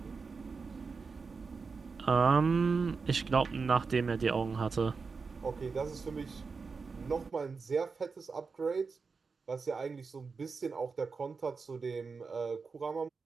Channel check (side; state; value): left; quieter; 4.8 dB